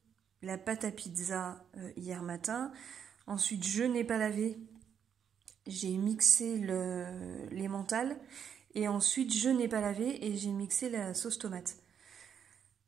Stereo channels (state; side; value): quieter; left; 8.0 dB